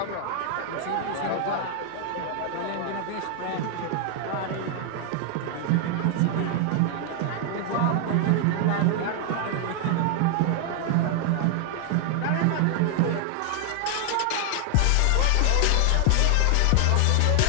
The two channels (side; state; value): both; different; correlation 0.00